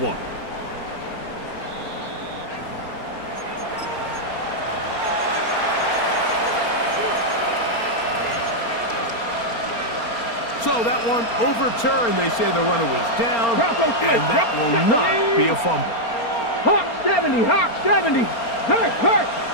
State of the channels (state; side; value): late; right; 4.3 ms